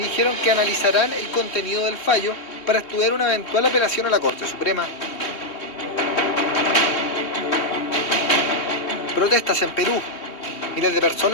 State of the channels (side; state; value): right; late; 2.8 ms